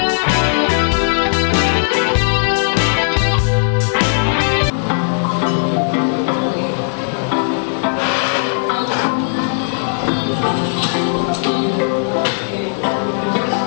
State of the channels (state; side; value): silent; right; digital silence